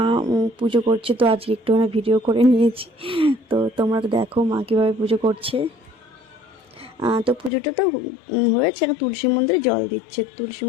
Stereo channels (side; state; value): right; drops out; at 7.5 s